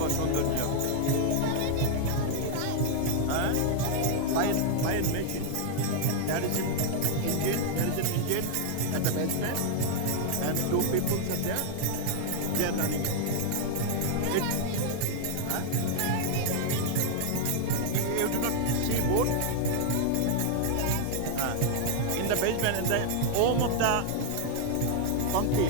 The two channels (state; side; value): different; both; correlation 0.00